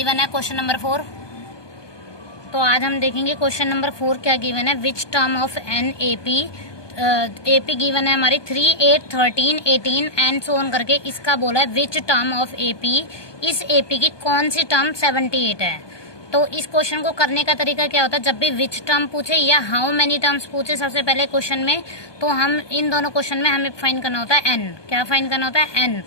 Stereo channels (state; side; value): late; right; 1.2 ms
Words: है क्वेश्चन नंबर 4। तो आज हम देखेंगे क्वेश्चन नंबर 4 क्या गिवन है। Which term of an AP given है हमारी 3, 8, 13, 18 एंड सो ऑन करके। इसका बोला है विच टर्म ऑफ एपी, इस एपी की कौन सी टर्म 78 है। तो इस क्वेश्चन को करने का तरीका क्या होता है, जब भी विच टर्म पूछे या हाउ मेनी टर्म्स पूछे सबसे पहले क्वेश्चन में, तो हम इन दोनों क्वेश्चन में हमें फाइंड करना होता है एन। क्या फाइंड करना होता है? एन।